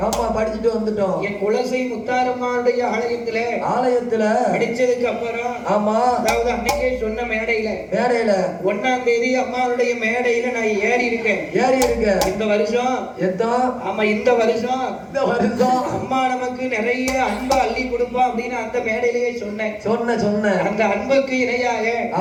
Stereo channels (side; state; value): both; identical; correlation 1.00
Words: ஆமா படிச்சுட்டு வந்துட்டோம். என் குலசை முத்தாரம்மாளுடைய ஆலயத்துல படிச்சதுக்கு அப்புறம் ஆமா அதாவது அன்னைக்கே சொன்ன மேடையில 1ஆம் தேதி அம்மாவுடைய மேடையில நான் ஏறி இருக்கேன். இந்த வருஷம் இந்த வருஷம் அம்மா நமக்கு நிறைய அன்பை அள்ளி கொடுப்பா அப்படின்னு அந்த மேடையிலேயே சொன்னேன். அந்த அன்புக்கு இணையாக